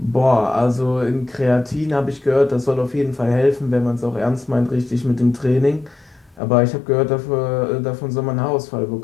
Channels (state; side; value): drops out; right; at 6.4 s